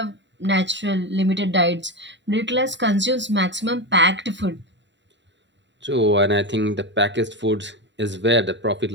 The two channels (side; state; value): left; late; 0.52 ms